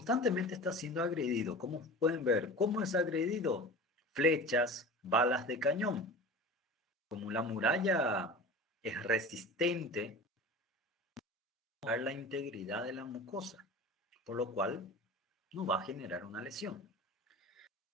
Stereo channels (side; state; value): both; normal; correlation 0.35